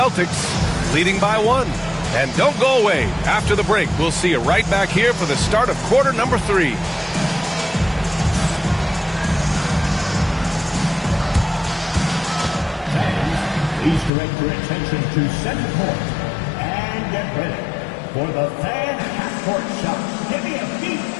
leading by 1. And don't go away. After the break, we'll see you right back here for the start of quarter number 3. Please direct your attention to center court and get ready for the fan half-court shot. Give me a beat.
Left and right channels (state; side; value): drops out; right; at 14.1 s